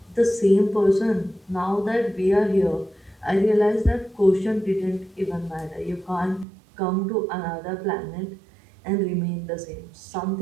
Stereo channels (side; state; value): left; drops out; at 6.5 s